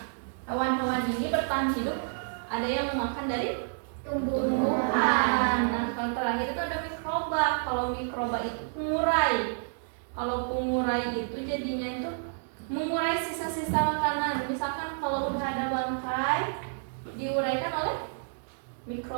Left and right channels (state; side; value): silent; left; digital silence